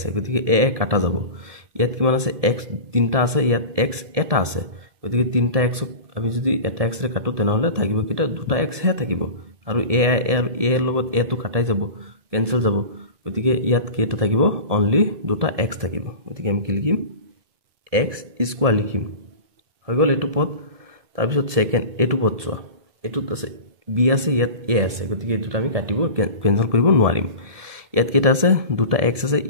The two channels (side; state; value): left; late; 1.7 ms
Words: গতিকে a কাটা যাব ইয়াত কিমান আছে x তিনটা আছে ইয়াত x এটা আছে গতিকে তিনটা x আমি যদি এটা x ৰে কাটো তেনেহলে থাকিব কিটা দুটা x হে থাকিব আৰু a আৰু a লগত a তো কাটাই যাব কেনসেল যাব গতিকে ইয়াত কেটা থাকিব অনলি দুটা x থাকিব গতিকে আমি কি লিখিম x² লিখিম হৈ গল এটো পদ তাৰ পিছত সেকেন্ড এটো পদ চোৱা এটোত আছে b আছে ইয়াত a আছে গতিকে এটোটা আমি কাটিব কেনসেল কৰিব নোৱাৰিম ইয়াত কেটা আছে দুটা x আছে